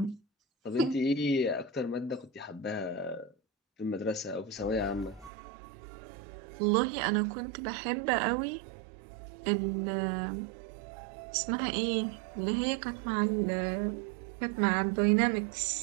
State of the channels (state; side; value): drops out; left; at 5.3 s